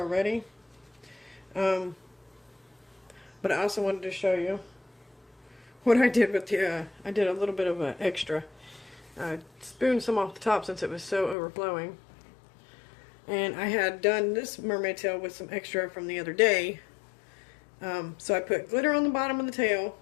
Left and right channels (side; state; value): right; drops out; at 11.4 s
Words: But I also wanted to show you what I did with the, I did a little bit of an extra. I spooned some off the top since it was so overflowing. And I had done this mermaid tail with some extra from the other day. So I put glitter on the bottom of the tail.